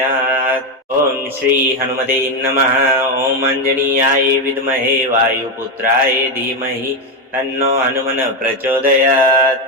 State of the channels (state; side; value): normal; both; correlation 0.09